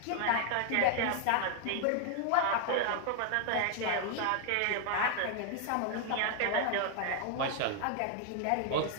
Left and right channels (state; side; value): different; both; correlation 0.00